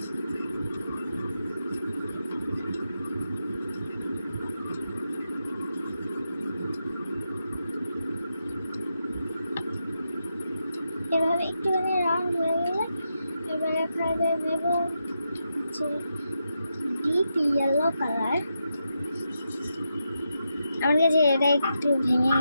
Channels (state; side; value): inverted; both; correlation -0.86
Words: এভাবে একটুখানি রাউন্ড হয়ে গেলে এবার এখানে নেব হচ্ছে ডিপ ইয়েলো কালার। আমার কাছে এটা একটু ভেঙে